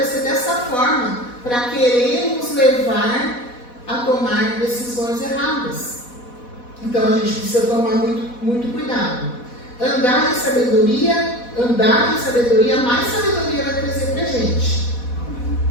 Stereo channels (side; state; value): right; late; 4.1 ms